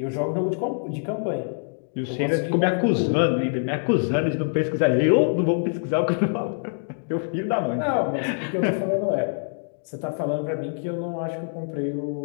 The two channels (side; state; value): right; silent; digital silence